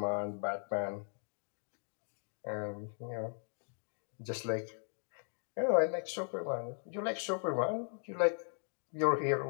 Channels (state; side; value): silent; right; 53 dB below the other